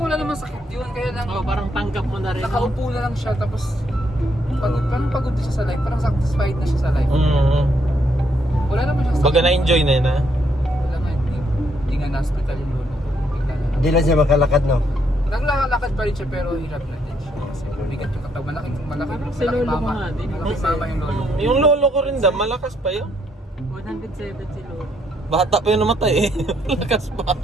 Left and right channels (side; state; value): both; normal; correlation 0.73